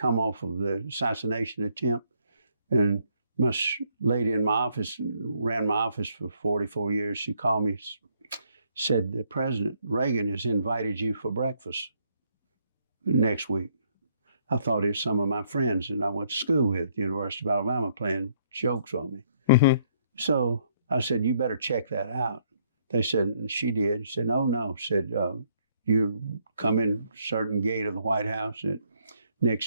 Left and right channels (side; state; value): both; inverted; correlation -0.70